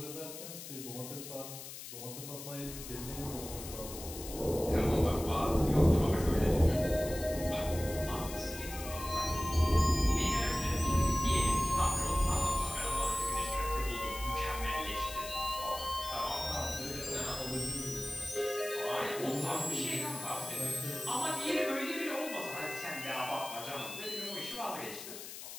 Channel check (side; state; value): left; noise; hiss, 11 dB below the sound